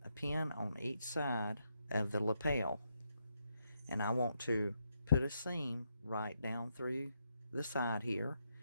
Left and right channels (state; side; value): inverted; both; correlation -0.80